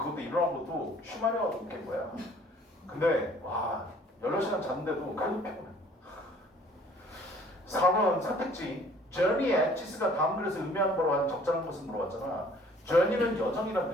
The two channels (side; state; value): both; normal; correlation 0.55